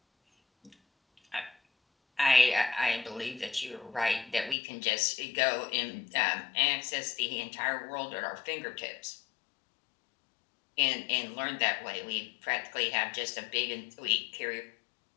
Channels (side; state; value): right; drops out; at 4.5 s